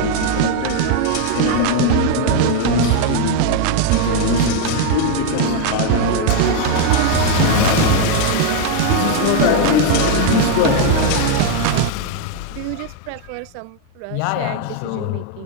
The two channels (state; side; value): different; both; correlation 0.01